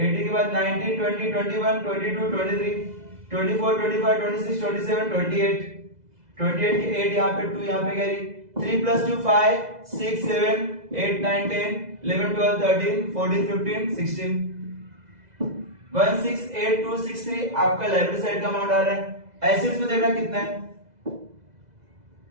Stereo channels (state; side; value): late; left; 2.0 ms